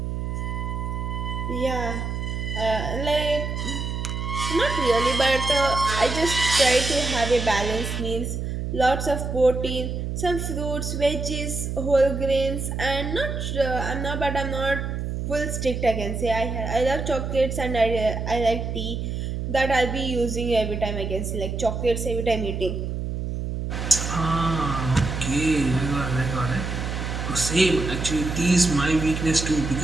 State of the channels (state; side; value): noise; right; hum, 3 dB below the sound